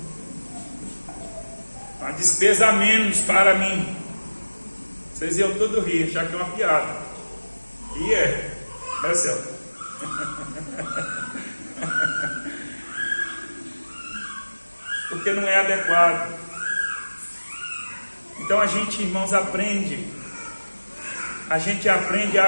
Uma despesa a menos para mim. Vocês iam todo rir, achar que é uma piada. E é Celso. Porque não é adequado. Então a gente, irmãos, aprende. A gente aprende a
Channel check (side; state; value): both; inverted; correlation -1.00